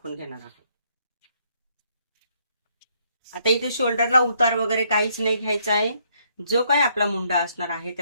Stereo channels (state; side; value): inverted; both; correlation -0.70